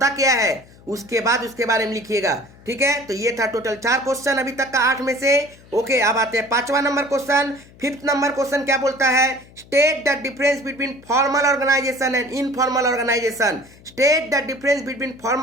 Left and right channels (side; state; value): left; noise; hum, 24 dB below the sound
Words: क्या है उसके बाद उसके बारे में लिखिएगा, ठीक है। तो ये था टोटल 4 क्वेश्चन अभी तक का 8 में से। ओके, अब आते हैं 5वां number question. 5th number question क्या बोलता है, state the difference between formal organisation and informal organisation, state the difference between